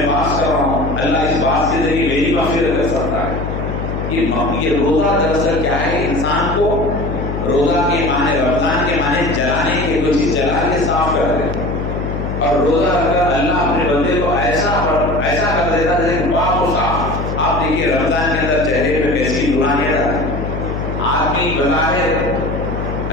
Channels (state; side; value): noise; left; hum, 4 dB below the sound